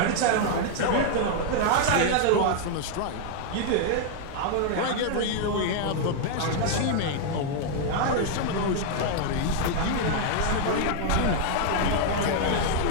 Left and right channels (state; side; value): different; both; correlation 0.00